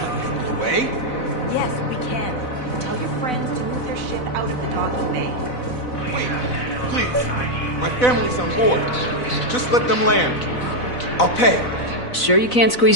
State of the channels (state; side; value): late; right; 4.0 ms